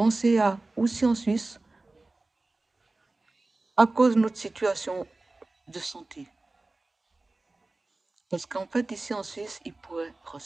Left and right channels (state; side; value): quieter; left; 3.2 dB